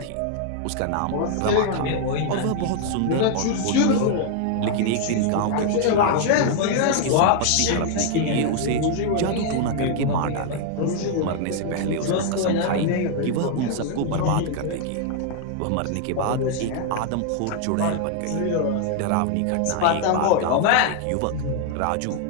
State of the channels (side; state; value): both; different; correlation 0.00